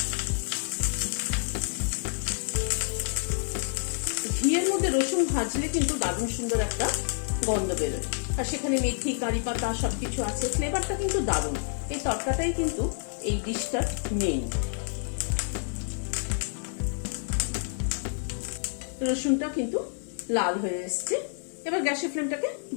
ঘিয়ের মধ্যে রসুন ভাজলে কিন্তু দারুণ সুন্দর একটা গন্ধ বেরোয়, আর সেখানে মেথি কারি পাতা সবকিছু আছে, ফ্লেভারটা কিন্তু দারুণ। এই তরকাটাই কিন্তু এই ডিশটার মেইন। রসুনটা কিন্তু লাল হয়ে এসছে। এবার গ্যাসের ফ্লেমটাকে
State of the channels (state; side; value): silent; right; digital silence